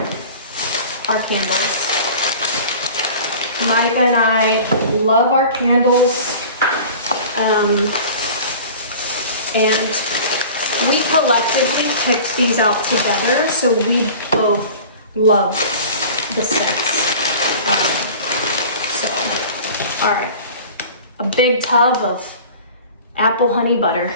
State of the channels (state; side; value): inverted; both; correlation -0.41